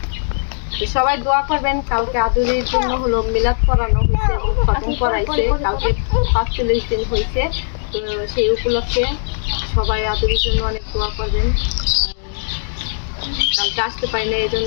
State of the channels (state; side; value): silent; right; digital silence